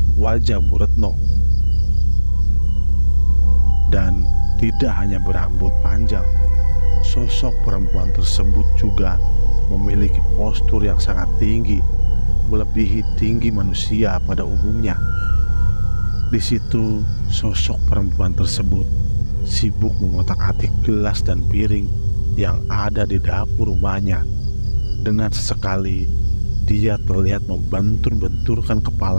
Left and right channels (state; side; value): inverted; both; correlation -1.00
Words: wajah Bu Retno. Dan tidak hanya berambut panjang, sosok perempuan tersebut juga memiliki postur yang sangat tinggi, melebihi tinggi manusia pada umumnya. Di situ sosok perempuan tersebut sibuk mengotak-atik gelas dan piring yang ada di dapur rumahnya. Dengan sesekali dia terlihat membentur-benturkan